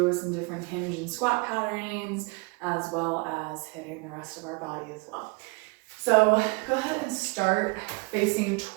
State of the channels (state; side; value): quieter; left; 29.5 dB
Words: some different hinge and squat patternings, as well as hitting the rest of our body as well. So go ahead and start facing